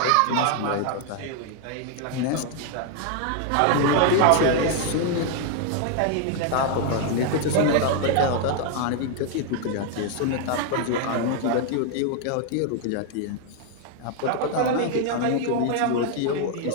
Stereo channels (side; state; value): both; different; correlation 0.00